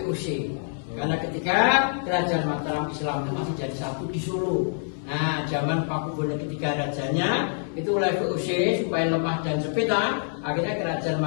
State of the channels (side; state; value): right; silent; 60 dB below the other